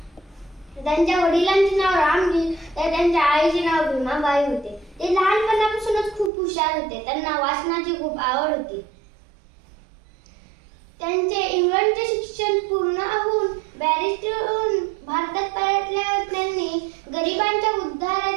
त्यांच्या वडिलांचे नाव रामजी तर त्यांच्या आईचे नाव भीमाबाई होते. ते लहानपणापासूनच खूप हुशार होते. त्यांना वाचनाची खूप आवड होती. त्यांचे इंग्लंडचे शिक्षण पूर्ण होऊन बॅरिस्टर होऊन भारतात परतल्यावर त्यांनी गरिबांच्या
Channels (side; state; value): left; drops out; at 6.3 s